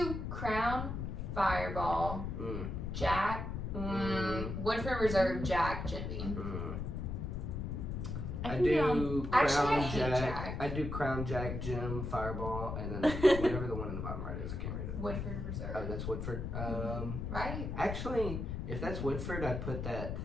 Crown, Fireball, Mm. Jack, Woodford Reserve, Jack, Jim Beam. I can be on- do Actually, I Crown hate Jack. Jack. I do Crown Jack, Jim, Fireball, and then whatever the one in the bottom right is. I can't read it. Woodford Reserve. Oh, that's Woodford. Right? Actually, if that's Woodford, I'd put that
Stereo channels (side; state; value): left; noise; rumble, 4 dB below the sound